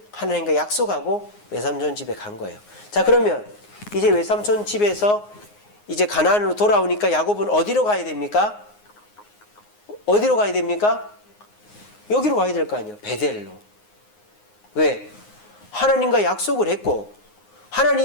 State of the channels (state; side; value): late; right; 9.6 ms